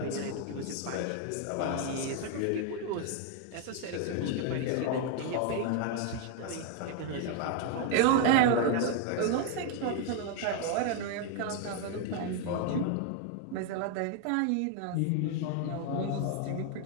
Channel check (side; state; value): both; different; correlation 0.00